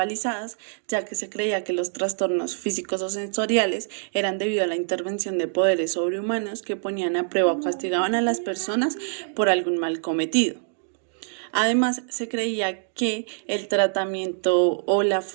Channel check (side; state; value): left; silent; digital silence